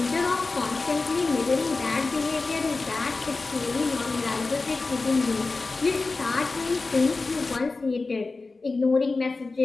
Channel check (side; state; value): right; quieter; 3.7 dB